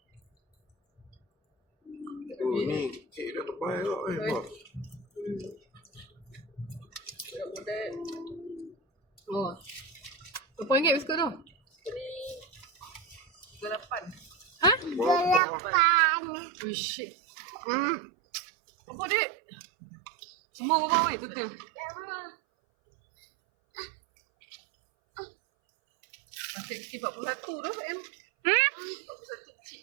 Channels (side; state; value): left; drops out; at 15.4 s